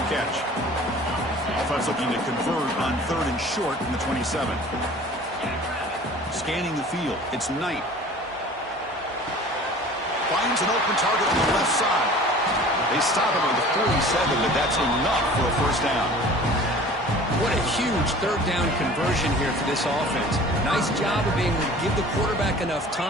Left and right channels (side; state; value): both; normal; correlation 0.45